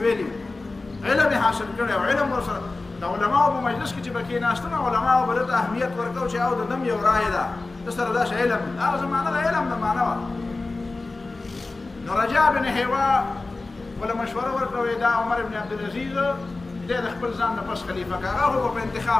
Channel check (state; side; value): quieter; right; 3.4 dB